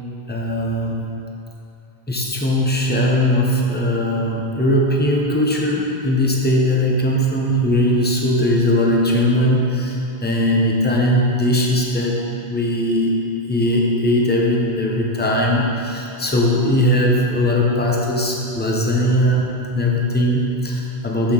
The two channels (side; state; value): both; normal; correlation 0.13